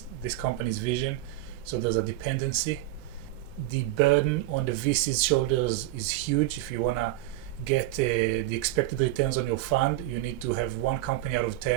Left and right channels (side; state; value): left; quieter; 15.8 dB